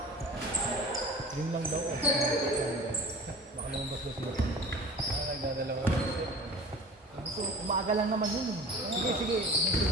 Yun lang daw. Baka lumabas daw sila. Nagdadalawa. Umaga lang naman yun. Sige, sige.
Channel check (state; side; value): normal; both; correlation 0.41